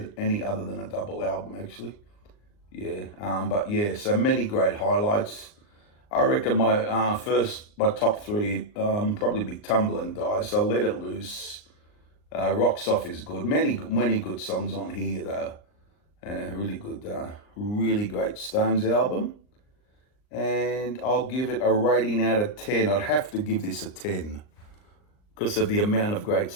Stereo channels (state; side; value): late; right; 39 ms